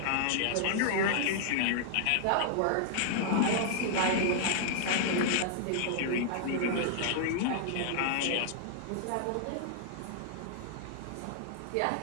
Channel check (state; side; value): different; both; correlation -0.01